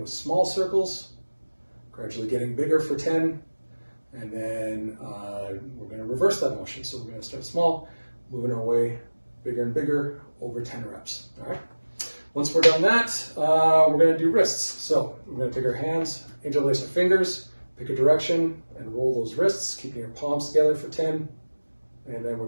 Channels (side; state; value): both; inverted; correlation -1.00